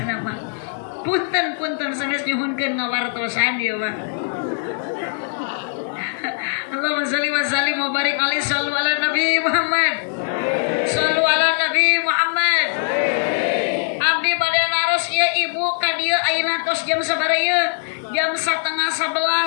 mah. Punten sanes nyuhunkeun ngawartosan ieu mah. Allahumma shalli wa sallim wa barik alaihi sallu ala Nabi Muhammad. Sallu ala Nabi Muhammad. Abdi bade naros ieu ibu ka dieu ayeuna tos jam sabaraha ieu? Jam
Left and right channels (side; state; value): right; silent; digital silence